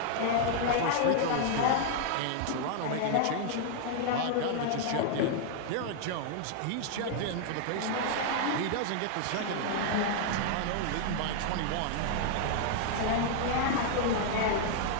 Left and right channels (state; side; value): different; both; correlation 0.00